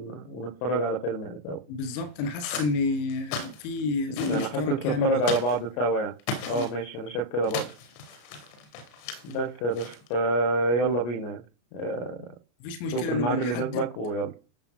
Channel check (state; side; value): late; right; 33 ms